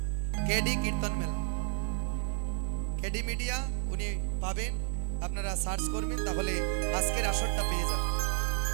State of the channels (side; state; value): left; silent; 57 dB below the other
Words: কেডি কীর্তন মেলা, কেডি মিডিয়া উনি পাবেন, আপনারা সার্চ করবেন তাহলে আজকের আসরটা পেয়ে যাবেন।